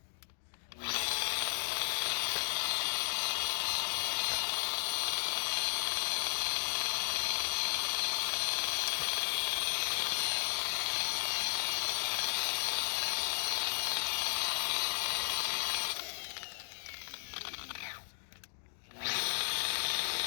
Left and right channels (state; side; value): silent; right; digital silence